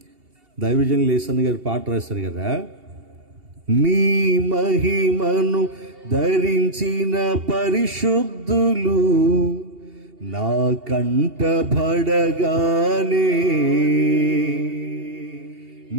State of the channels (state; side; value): late; left; 2.8 ms